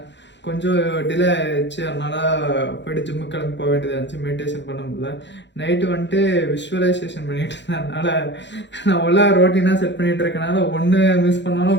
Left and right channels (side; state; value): right; late; 0.52 ms